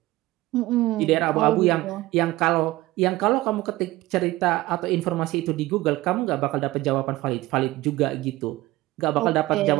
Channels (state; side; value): quieter; left; 18.2 dB